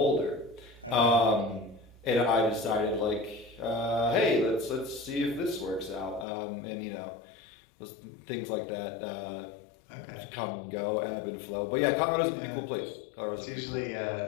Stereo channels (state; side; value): drops out; right; at 6.2 s